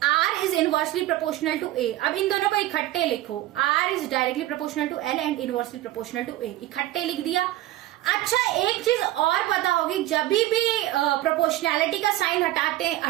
R is inversely proportional to A। अब इन दोनों को इकट्ठे लिखो, R is directly proportional to L and inversely proportional to A, इकट्ठे लिख दिया। अच्छा, एक चीज और पता होगी, जब भी प्रोपोर्शनैलिटी का साइन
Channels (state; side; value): quieter; left; 15.5 dB